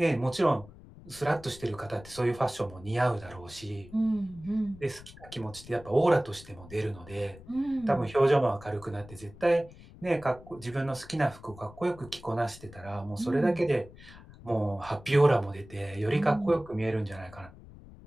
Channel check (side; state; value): left; noise; rumble, 19 dB below the sound